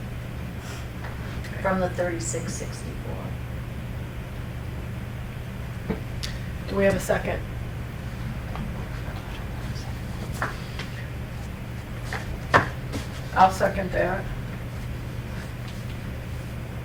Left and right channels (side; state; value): both; identical; correlation 1.00